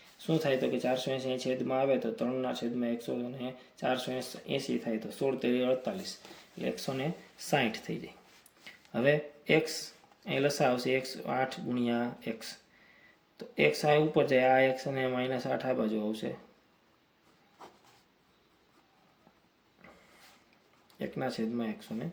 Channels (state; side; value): identical; both; correlation 1.00